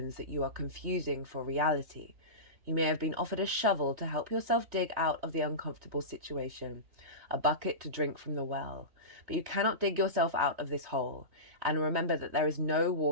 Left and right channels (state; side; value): late; left; 3.2 ms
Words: that you are confusing for reality. You may have been offered a shovel to help yourself dig out of the uncomfortable situation, a bucket to drink from the well, but you cannot dig yourself out of this hole, and remember that there is no